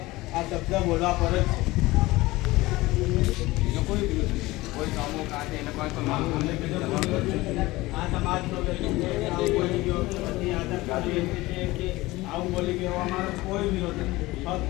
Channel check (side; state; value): right; quieter; 19.8 dB